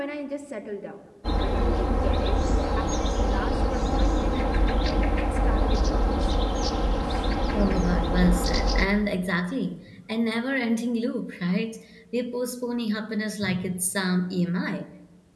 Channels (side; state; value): both; identical; correlation 1.00